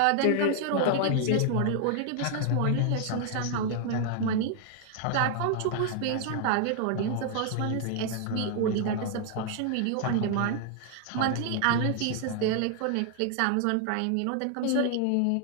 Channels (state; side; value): different; both; correlation 0.00